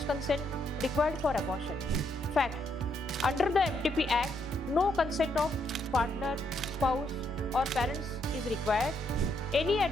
consent required for abortion. Fact. Under the MTP Act, no consent of partner, spouse or parents is required. Any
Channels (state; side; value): normal; both; correlation 0.75